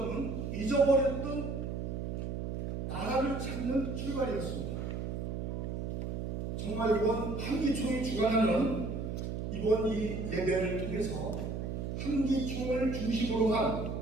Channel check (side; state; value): right; noise; hum, 3 dB below the sound